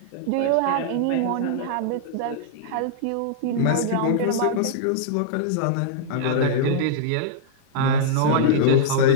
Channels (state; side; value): different; both; correlation -0.02